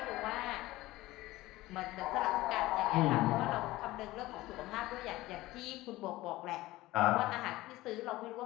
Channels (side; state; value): right; quieter; 17.9 dB